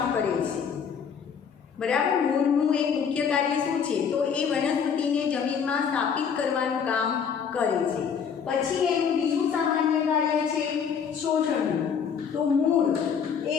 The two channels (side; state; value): right; quieter; 6.9 dB